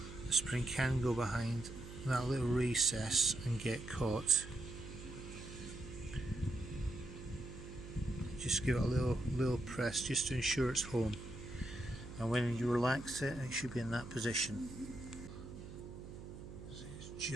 The spring can go behind that little recess and get caught. Just give it a little press just to ensure it's home, and when you relax it, it should be in that position. So it's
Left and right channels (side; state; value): right; noise; hum, 12 dB below the sound